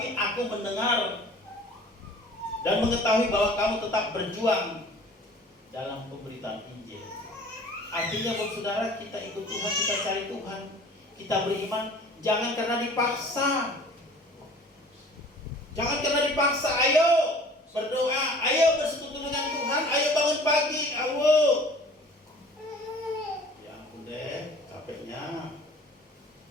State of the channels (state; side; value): normal; both; correlation 0.48